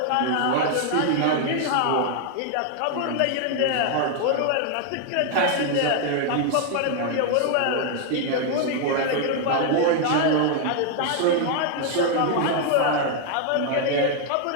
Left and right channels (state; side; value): different; both; correlation 0.00